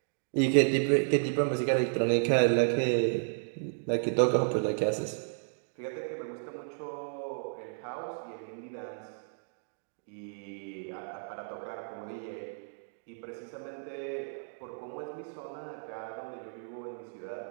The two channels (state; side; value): silent; left; digital silence